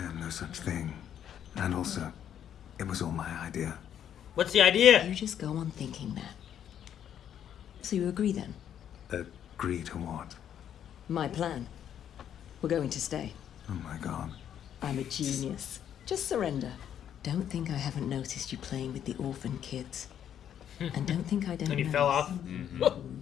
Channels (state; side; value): quieter; right; 9.6 dB